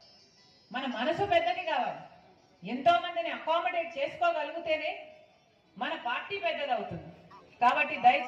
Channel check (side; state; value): both; identical; correlation 1.00